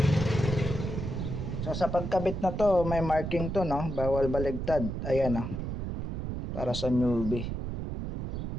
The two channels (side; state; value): right; noise; rumble, 4 dB below the sound